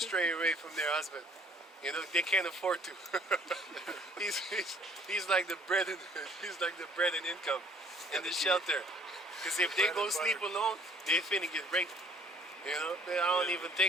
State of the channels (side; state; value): both; normal; correlation 0.57